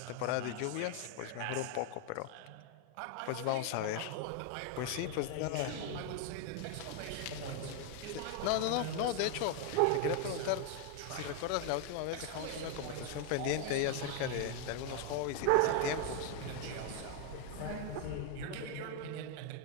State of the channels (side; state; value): both; different; correlation 0.01